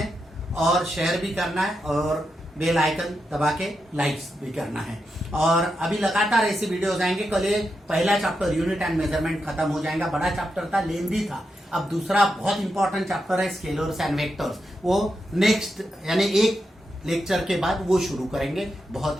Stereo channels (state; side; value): normal; both; correlation 0.86